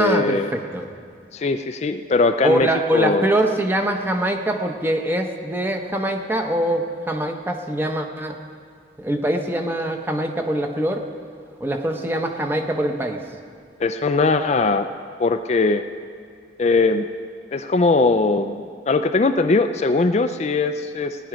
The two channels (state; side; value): normal; both; correlation 0.46